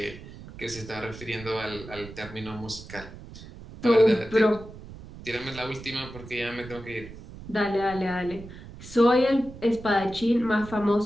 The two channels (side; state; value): right; noise; rumble, 15 dB below the sound